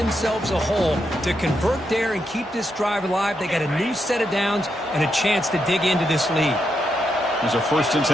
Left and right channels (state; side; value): normal; both; correlation 0.82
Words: a hole to convert there and keep this drive alive, they got a new set of downs and a chance to dig into this lead. There's a 1st and